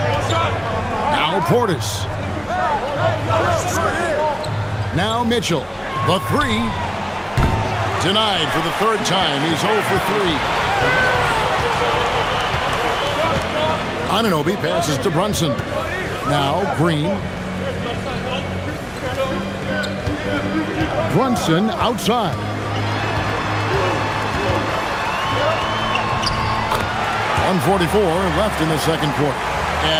Now Portis. Now Mitchell. The three. Denied for the third time. He's 0 for 3. Anunoby passes to Brunson. Now Green. Brunson outside. .144 left in the second quarter.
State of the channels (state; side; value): identical; both; correlation 1.00